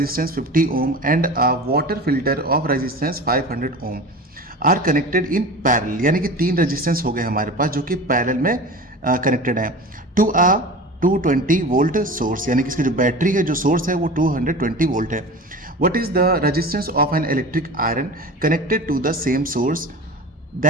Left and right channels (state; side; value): normal; both; correlation 0.34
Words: 50 ohm and a water filter of resistance 500 ohm are connected in parallel, यानी कि तीन रेजिस्टेंस हो गए हमारे पास जो कि पैरेलल में कनेक्टेड है टू अ 220 वोल्ट सोर्स, यानी कि इसकी जो बैटरी है, जो सोर्स है वो 220 वोल्ट है। What is the resistance of an electric iron connected to the same source